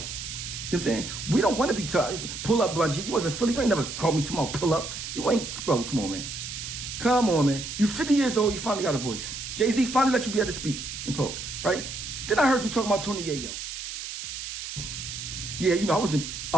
You know what I'm saying? We don't want to be tough. Pull up, Bungie. You wasn't Philly. You ain't never called me tomorrow. Pull up. You ain't, bro. Come on, man. Come on, man. You 50 years old. You finally got a voice. Jay-Z finally let you be able to speak and talk, right? Then I heard you talking about Tony Yayo. Yeah, I was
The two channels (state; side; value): noise; right; hiss, 7 dB below the sound